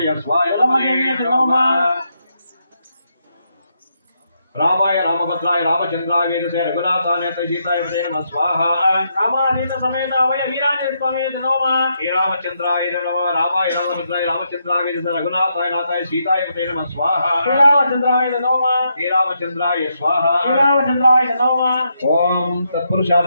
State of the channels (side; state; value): both; inverted; correlation -0.80